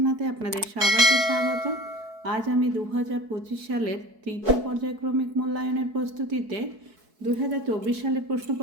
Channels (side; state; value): left; late; 4.6 ms